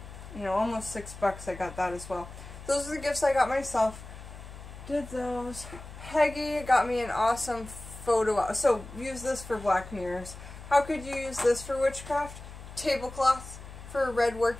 you know, almost $6 I got that as well. Those are the gifts I got myself. Did those. Peggy got me an awesome photo. So use this for black mirrors. How could you use this for witchcraft? Tablecloth for red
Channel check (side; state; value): left; noise; hum, 14 dB below the sound